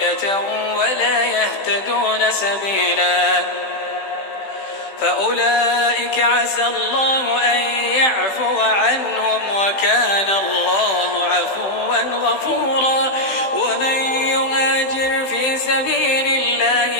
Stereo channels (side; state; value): right; late; 16 ms